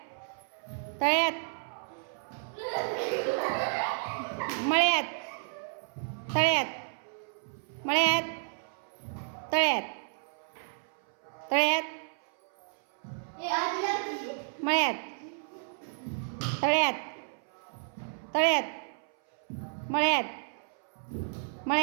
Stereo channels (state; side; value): silent; left; 57 dB below the other